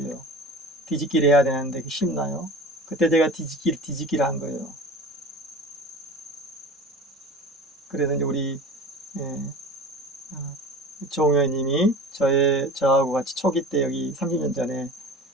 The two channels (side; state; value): both; normal; correlation 0.36